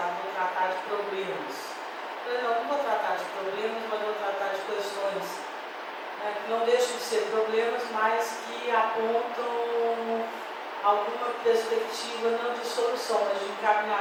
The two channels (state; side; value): identical; both; correlation 1.00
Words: em tratar de problemas. Eu não vou tratar de problemas, mas vou tratar de questões, né, que não deixam de ser problemas, mas que apontam alguma perspectiva, não de solução, mas de